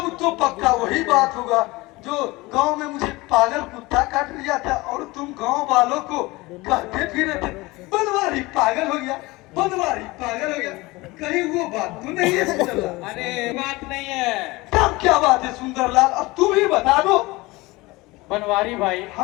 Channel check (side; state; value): right; quieter; 21.8 dB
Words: तो पक्का वही बात होगा जो गांव में मुझे पागल कुत्ता काट लिया था और तुम गांव वालों को कहते फिरे थे बनवारी पागल हो गया बनवारी पागल हो गया कहीं वो बात तो नहीं है सुंदरलाल अरे बात नहीं है तब क्या बात है सुंदरलाल अब तुम ही बता दो बनवारी भाई